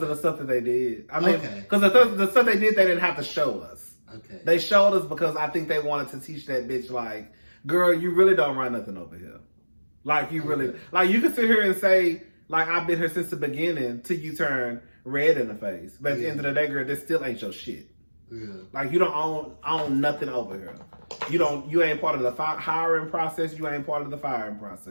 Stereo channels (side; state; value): both; inverted; correlation -1.00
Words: of the stuff that they did. I mean, Okay. because the stuff they did, they didn't have to show us. Okay. They showed us because I think they wanted to teach that bitch like, girl, you really don't run nothing over here. Like you really, like you can sit here and say, like I've been here since the beginning till you turn red in the face. But at the end of the day, girl, this still ain't your shit. Yeah. Like you don't own nothing over here. You ain't part of the hiring process. You ain't part of the firing